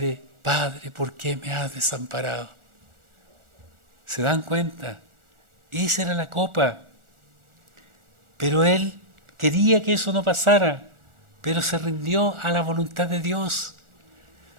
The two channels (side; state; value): left; late; 1.4 ms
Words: Padre, ¿por qué me has desamparado? ¿Se dan cuenta? Esa era la copa. Pero Él quería que eso no pasara, pero se rindió a la voluntad de Dios.